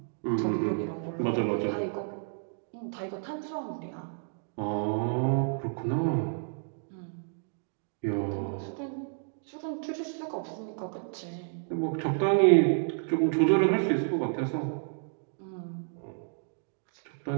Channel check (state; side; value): silent; left; digital silence